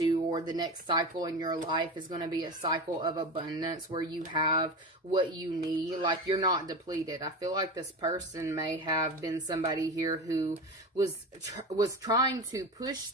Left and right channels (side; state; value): both; normal; correlation 0.26